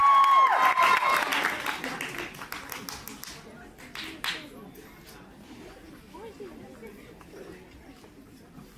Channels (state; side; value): identical; both; correlation 1.00